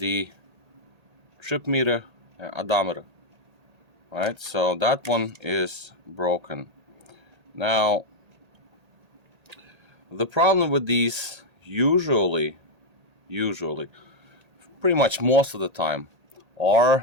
trip meter and odometer. Right, so that one is broken. Now the problem with these usually pretty much most of the time are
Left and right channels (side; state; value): left; late; 1.8 ms